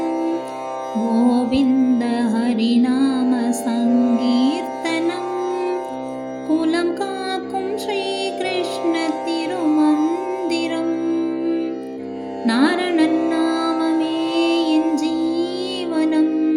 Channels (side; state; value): both; identical; correlation 1.00